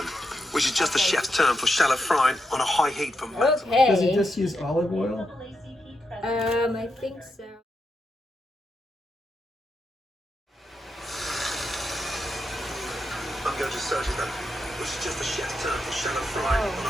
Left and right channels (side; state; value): both; normal; correlation 0.84